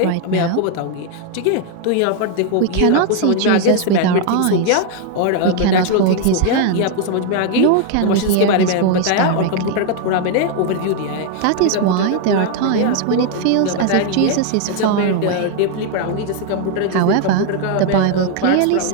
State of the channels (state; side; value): different; both; correlation 0.00